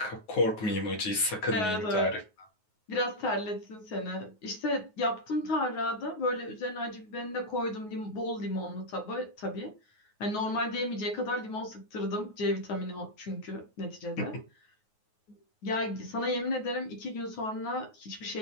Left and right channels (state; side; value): late; right; 9.4 ms